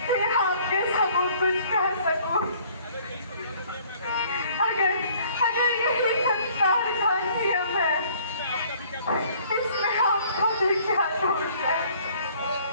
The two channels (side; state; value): both; inverted; correlation -0.57